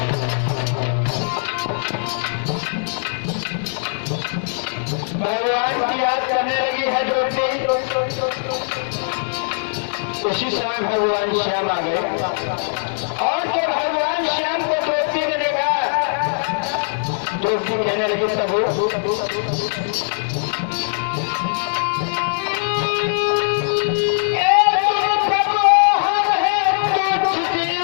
भगवान की याद करने लगी है द्रौपदी। उसी समय भगवान श्याम आ गए और जब भगवान श्याम को द्रौपदी ने देखा, द्रौपदी कहने लगी प्रभु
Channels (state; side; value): silent; right; digital silence